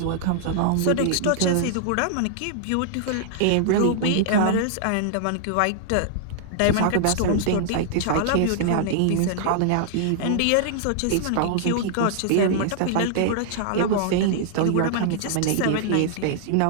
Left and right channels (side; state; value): both; different; correlation -0.01